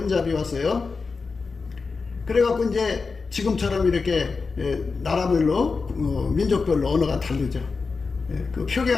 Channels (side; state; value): right; quieter; 4.5 dB